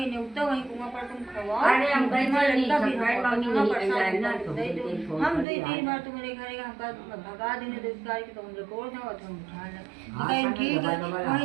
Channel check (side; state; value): left; drops out; at 5.5 s